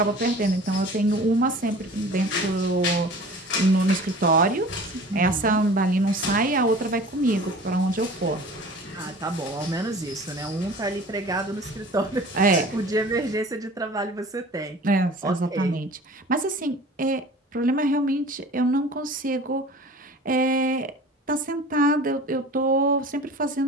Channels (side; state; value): both; normal; correlation 0.42